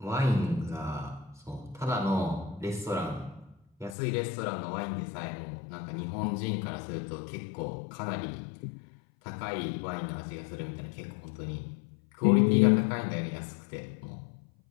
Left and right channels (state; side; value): drops out; right; at 4.0 s